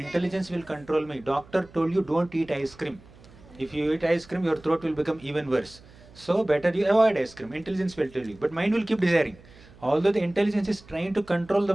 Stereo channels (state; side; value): noise; right; hum, 23 dB below the sound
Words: will control me. Doctor told you don't eat ice cream. If you eat ice cream, your throat will become even worse. So better you avoid ice cream. Intelligence will tell you. But mind will keep desiring. Although the intelligence is trying to control